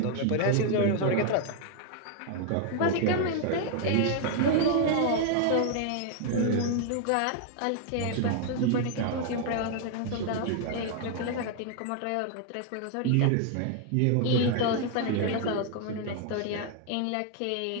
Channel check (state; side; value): different; both; correlation 0.00